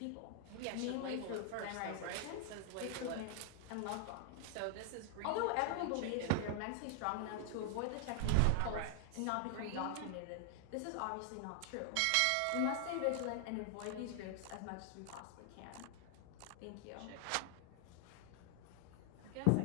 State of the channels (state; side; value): different; both; correlation 0.00